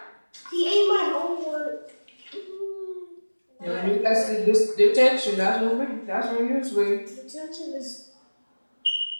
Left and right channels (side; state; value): both; inverted; correlation -1.00